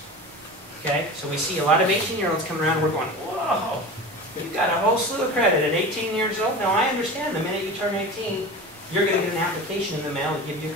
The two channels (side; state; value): both; normal; correlation 0.32